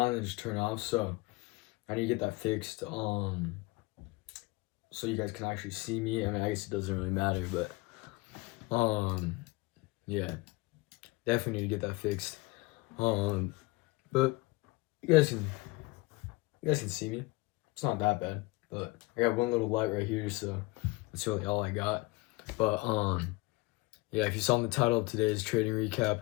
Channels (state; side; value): quieter; right; 23.0 dB